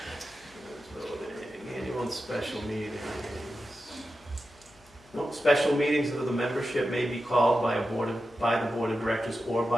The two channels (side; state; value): left; noise; hum, 28 dB below the sound